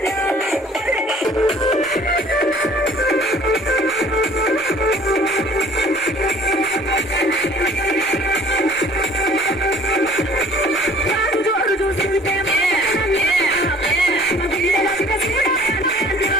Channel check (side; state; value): both; normal; correlation 0.52